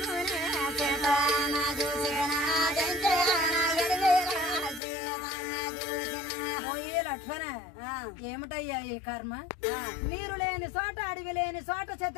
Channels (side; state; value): right; drops out; at 4.8 s